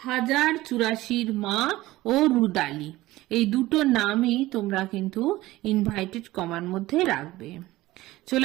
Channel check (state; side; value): quieter; left; 17.6 dB